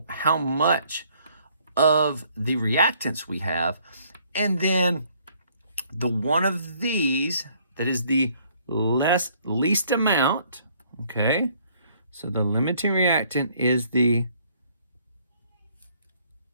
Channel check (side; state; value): both; inverted; correlation -0.63